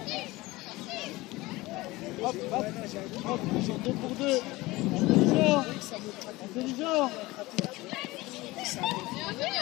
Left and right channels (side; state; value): right; quieter; 20.4 dB